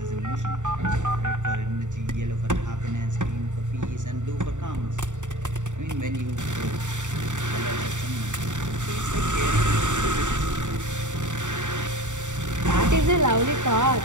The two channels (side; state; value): left; late; 0.85 ms